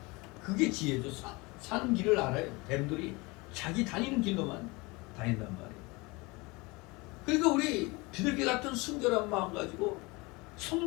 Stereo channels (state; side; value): quieter; right; 25.0 dB